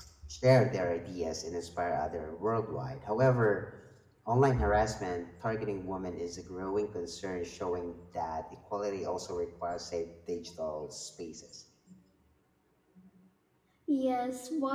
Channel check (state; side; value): identical; both; correlation 1.00